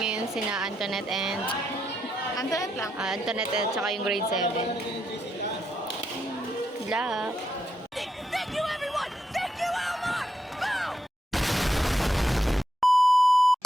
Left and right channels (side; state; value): both; normal; correlation 0.81